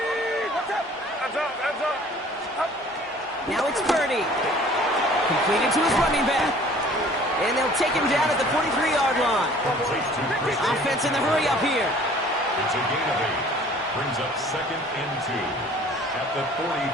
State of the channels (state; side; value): normal; both; correlation 0.51